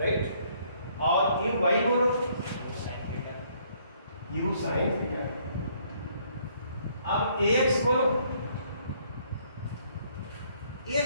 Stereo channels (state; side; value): inverted; both; correlation -0.66